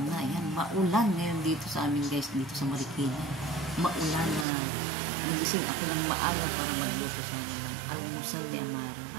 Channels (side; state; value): left; drops out; at 4.5 s